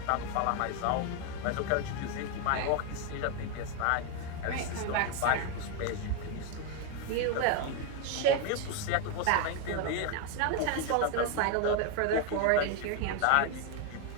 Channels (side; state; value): both; different; correlation 0.01